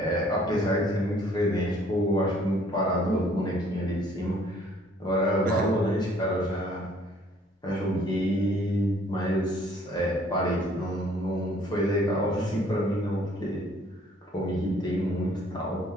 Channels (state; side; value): normal; both; correlation 0.59